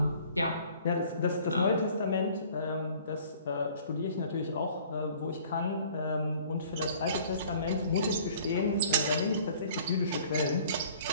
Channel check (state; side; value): inverted; both; correlation -0.53